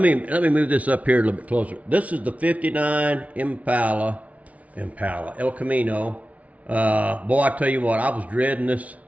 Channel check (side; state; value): left; late; 0.067 ms